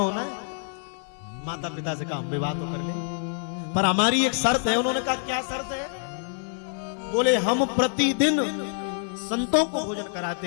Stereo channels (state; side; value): silent; right; 61 dB below the other